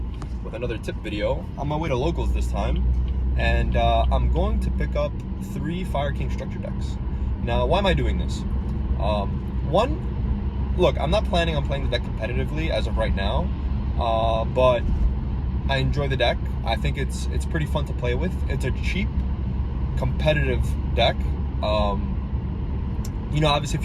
with another tip video. On my way to locals this time, and I'm going to pick up 3 Fire King structure decks. Now, why am I doing this? One, look, I'm not planning on playing the deck competitively as of right now, but I enjoy the deck. I think it's pretty fun to play with. It's a cheap, competitive deck. You know, obviously if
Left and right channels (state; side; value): identical; both; correlation 1.00